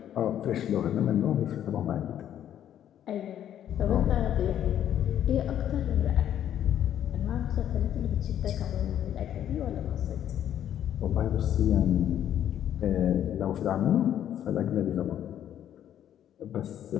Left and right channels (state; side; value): quieter; right; 10.6 dB